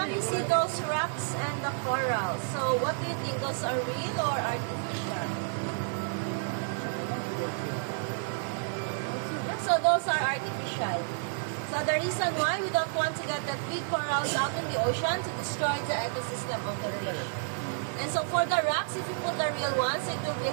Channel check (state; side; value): silent; left; 58 dB below the other